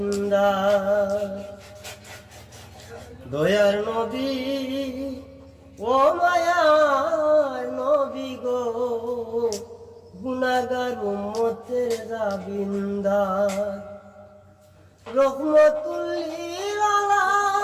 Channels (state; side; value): identical; both; correlation 1.00